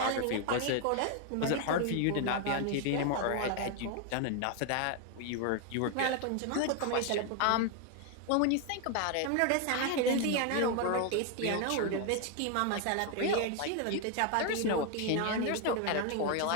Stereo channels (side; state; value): both; different; correlation 0.01